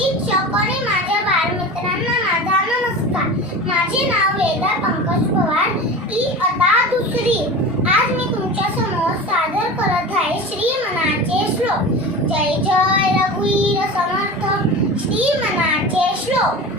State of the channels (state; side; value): normal; both; correlation 0.31